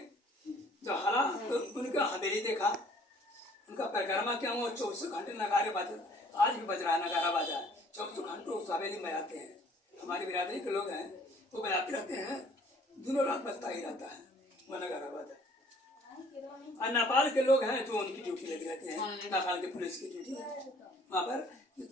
जब हरा तो उनका हवेली देखा, उनका परिक्रमा किया। वो 24 घंटे नगारे बाजे, आज भी बज रहा है नगारा बाजा, 24 घंटे उस हवेली में आते हैं। हमारी बिरादरी के लोग हैं, वो बजाते रहते हैं, दिनों रात बजता ही रहता है वो नगारा बाजा। और नेपाल के लोग हैं जो उनकी ड्यूटी लगी रहती है, नेपाल के पुलिस की ड्यूटी है। वहाँ पर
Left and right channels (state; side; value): normal; both; correlation 0.57